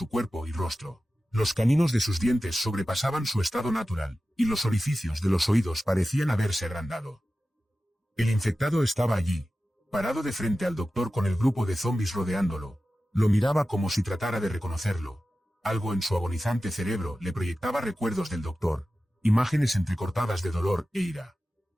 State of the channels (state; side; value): normal; both; correlation 0.94